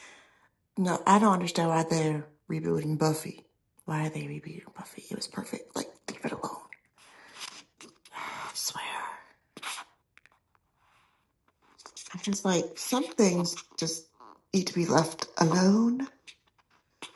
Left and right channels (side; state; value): both; identical; correlation 1.00